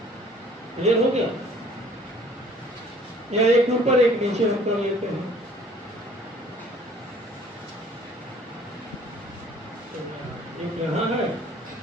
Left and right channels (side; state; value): both; normal; correlation 0.55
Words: क्लियर हो गया? या एक ऊपर एक नीचे हम कर लेते हैं। एक यहाँ है